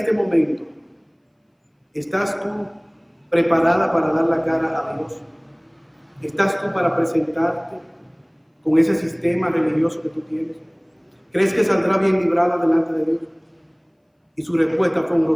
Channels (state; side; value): identical; both; correlation 1.00